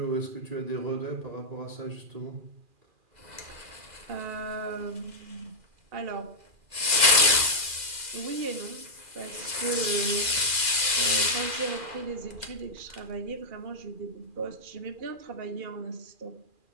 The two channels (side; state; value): left; late; 2.4 ms